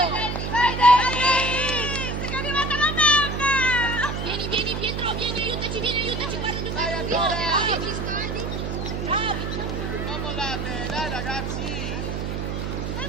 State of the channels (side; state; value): right; noise; hum, 3 dB below the sound